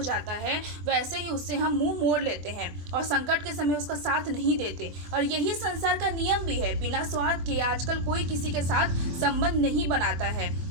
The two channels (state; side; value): late; left; 24 ms